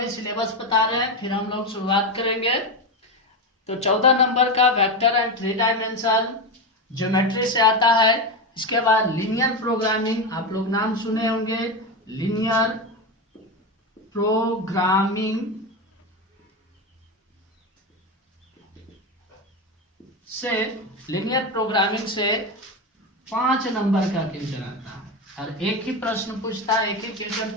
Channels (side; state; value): both; normal; correlation 0.16